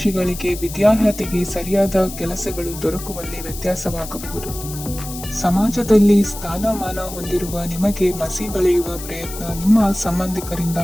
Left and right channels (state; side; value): noise; left; hiss, 12 dB below the sound